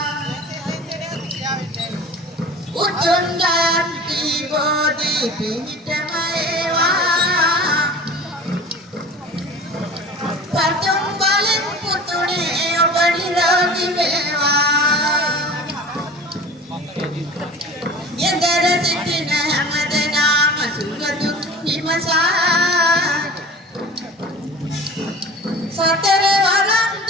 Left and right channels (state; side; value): normal; both; correlation 0.39